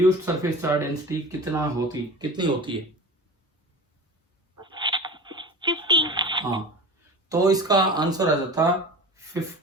सरफेस चार्ज डेंसिटी कितनी होती है। 50। हाँ, तो इसका आंसर आ जाता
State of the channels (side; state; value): both; normal; correlation 0.34